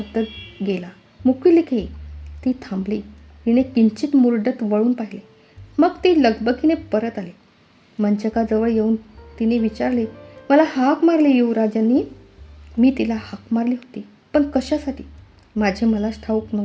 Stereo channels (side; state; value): both; identical; correlation 1.00